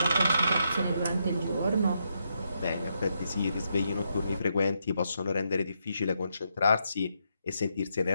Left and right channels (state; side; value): inverted; both; correlation -0.80